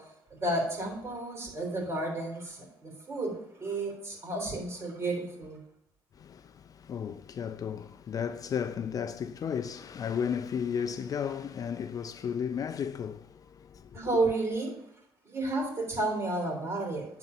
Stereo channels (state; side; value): normal; both; correlation 0.61